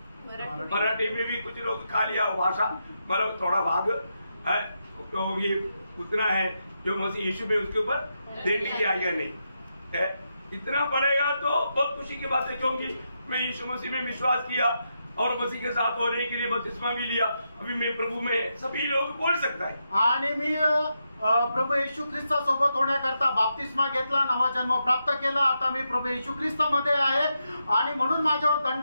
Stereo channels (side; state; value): both; inverted; correlation -0.84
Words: मराठी में भी कुछ लोग खा लिया भाषा, मतलब थोड़ा भाग है, तो ये उतना है जो मसीह यीशु में उसके ऊपर देने की आज्ञा नहीं है। इतना पड़ेगा तो बहुत खुशी की बात है, क्योंकि मैं यीशु मसीह में विश्वास किया और मसीह के साथ होने के लिए बपतिस्मा भी लिया। अभी मैं प्रभु में सभी लोग बोल सकता है, आणि मी प्रभू येशू ख्रिस्तासोबत होण्याकरता बाप्तिस्मा घेतला, नवा जन्म प्राप्त केला, आता मी प्रभू येशू ख्रिस्तामध्ये आहे आणि म्हणून माझ्यावर